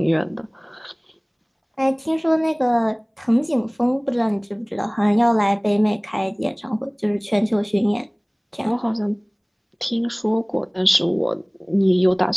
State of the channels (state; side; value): identical; both; correlation 1.00